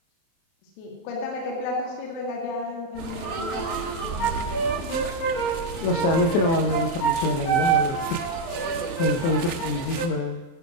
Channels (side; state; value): right; late; 30 ms